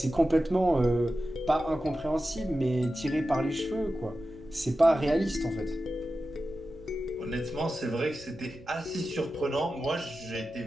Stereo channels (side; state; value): right; noise; rumble, 21 dB below the sound